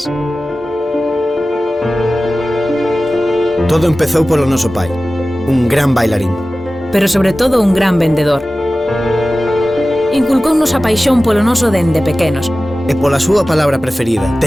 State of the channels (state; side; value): normal; both; correlation 0.96